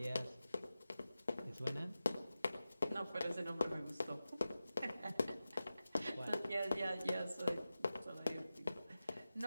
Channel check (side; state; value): both; inverted; correlation -0.94